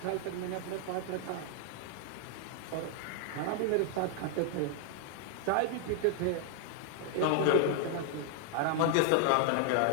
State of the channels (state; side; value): different; both; correlation 0.00